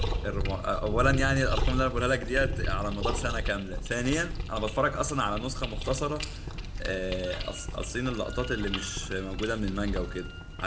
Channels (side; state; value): both; identical; correlation 1.00